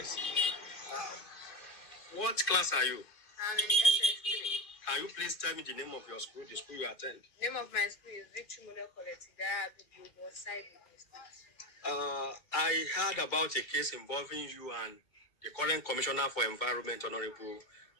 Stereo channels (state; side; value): late; right; 2.2 ms